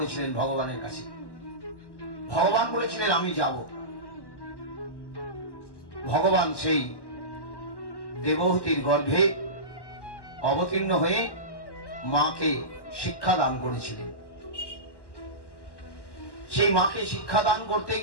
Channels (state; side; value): late; right; 1.1 ms